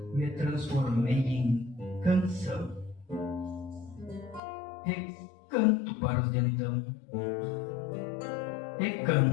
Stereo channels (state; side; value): drops out; right; at 4.4 s